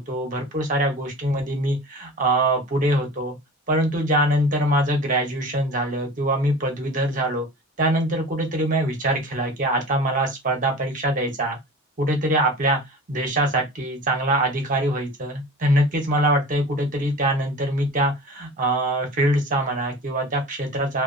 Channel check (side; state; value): both; normal; correlation 0.36